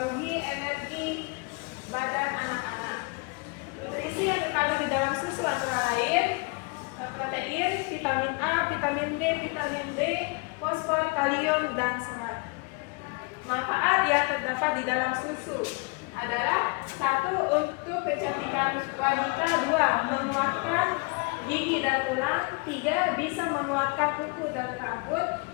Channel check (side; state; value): right; quieter; 31.5 dB